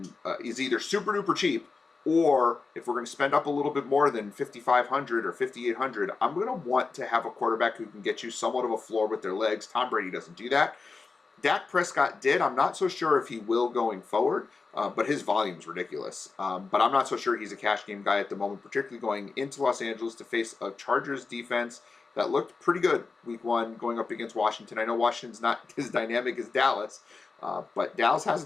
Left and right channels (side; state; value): right; quieter; 4.3 dB